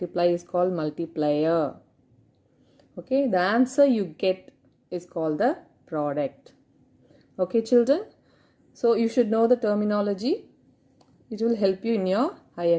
is called multiplier. Okay, the answer you get is called the product. Okay children, so you should know the terminology. It will help you in your higher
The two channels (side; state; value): both; identical; correlation 1.00